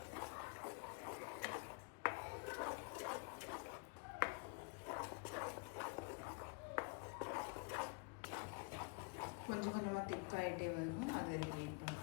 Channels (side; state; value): right; quieter; 33.6 dB